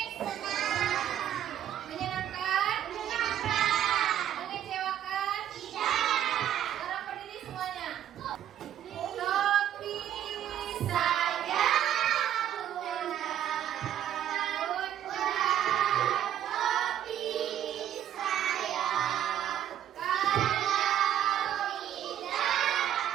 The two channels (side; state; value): left; quieter; 10.8 dB